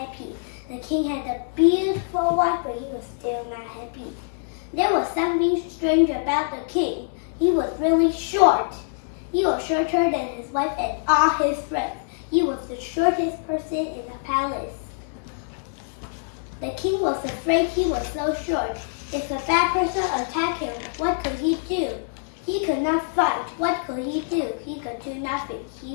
The king had a beautiful wife but he was still not happy. There was something strange about the king. He was really short. He was shorter than his wife and all his friends. He was the shortest person in the palace. The king was afraid he was so short. If a bad person attacked him, what could he do? He could not fight. What could he do? He could do nothing.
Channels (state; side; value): silent; right; digital silence